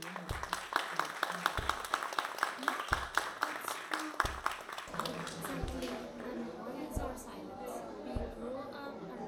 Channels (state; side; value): identical; both; correlation 1.00